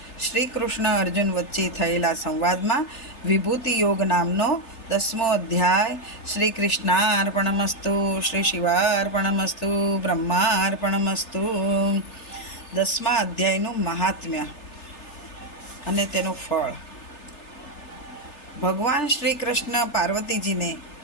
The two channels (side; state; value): right; late; 3.3 ms